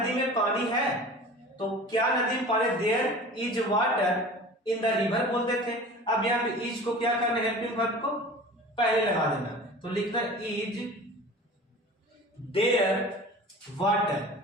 में पानी है, तो क्या नदी में पानी, there is water in the river बोलते थे। अब यहां पे इज को क्या करना, हेल्पिंग वर्ब को पहले लगा देना, तो लिखना is there water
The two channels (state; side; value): normal; both; correlation 0.39